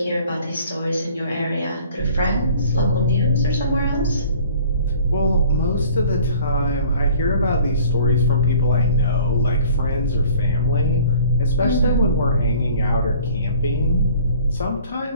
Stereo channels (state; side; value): inverted; both; correlation -0.51